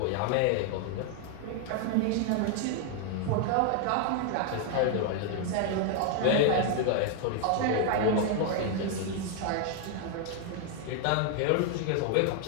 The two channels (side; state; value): both; different; correlation 0.00